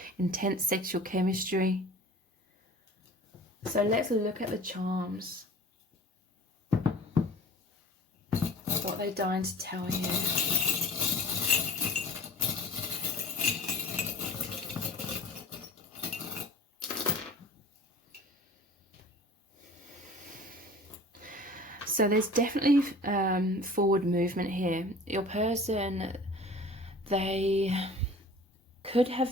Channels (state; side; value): normal; both; correlation 0.43